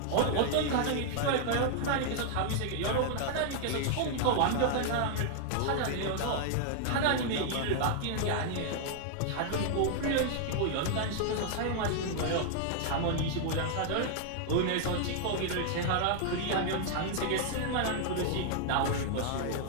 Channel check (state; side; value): different; both; correlation -0.01